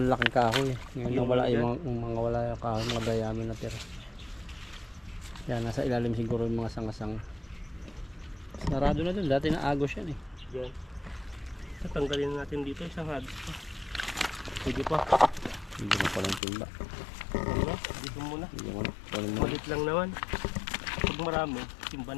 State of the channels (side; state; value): right; drops out; at 16.4 s